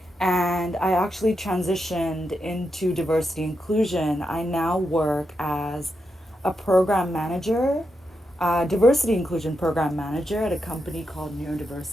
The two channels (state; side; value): normal; both; correlation 0.85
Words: And I actually transitioned into diversity inclusion. I now work as a program manager, diversity inclusion program manager at a company called